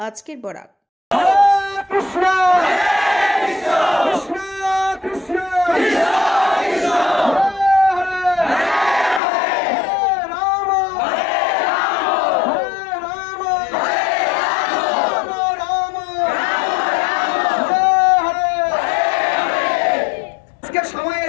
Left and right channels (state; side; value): drops out; right; at 9.2 s